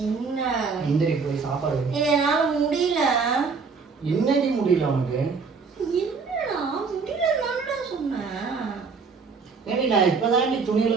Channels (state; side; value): quieter; left; 5.0 dB